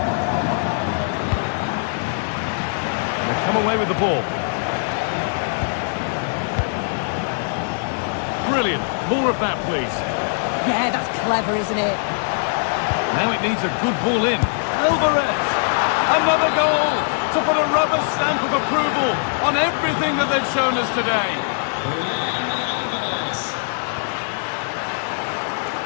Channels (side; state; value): right; silent; 65 dB below the other